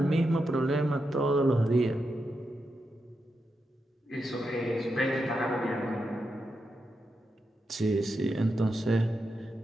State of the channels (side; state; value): both; normal; correlation 0.86